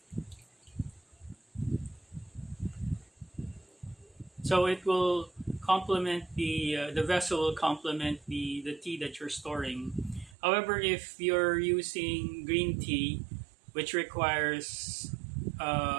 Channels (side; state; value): left; drops out; at 10.4 s